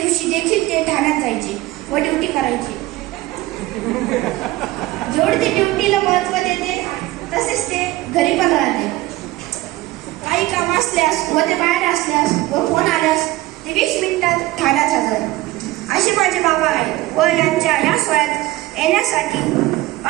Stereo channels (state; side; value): quieter; left; 17.9 dB